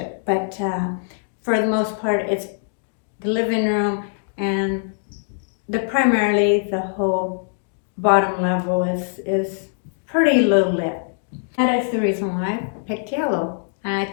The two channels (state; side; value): silent; right; digital silence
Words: But for the most part, it's the living room, and primarily the whole bottom level is pretty low lit. That is the reason why I picked yellow, and I